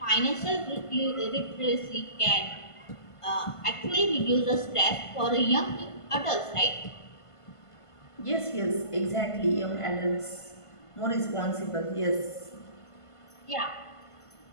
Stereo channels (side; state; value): right; late; 1.5 ms